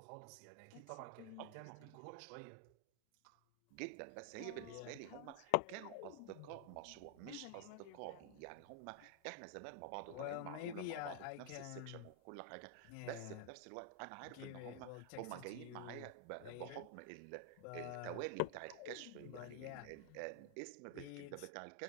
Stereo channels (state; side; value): different; both; correlation 0.00